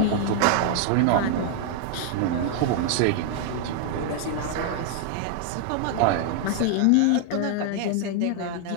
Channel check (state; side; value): different; both; correlation 0.00